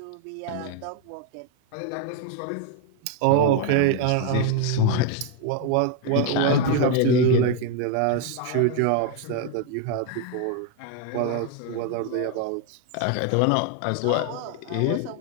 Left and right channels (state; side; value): different; both; correlation 0.01